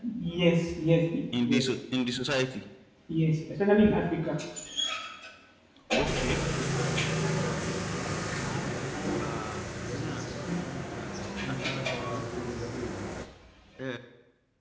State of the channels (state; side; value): identical; both; correlation 1.00